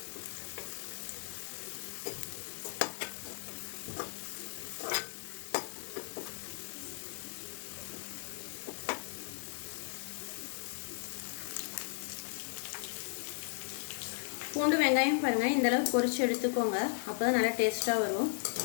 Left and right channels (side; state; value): right; silent; 54 dB below the other